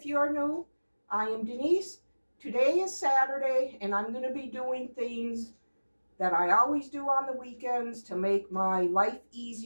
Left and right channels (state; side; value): inverted; both; correlation -1.00